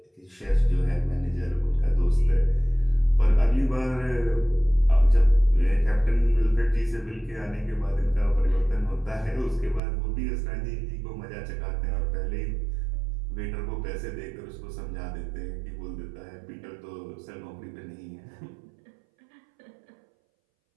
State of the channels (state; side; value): drops out; left; at 9.8 s